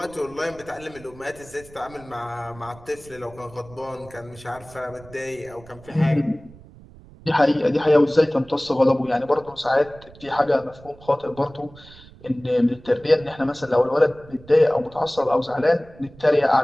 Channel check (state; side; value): noise; right; rumble, 22 dB below the sound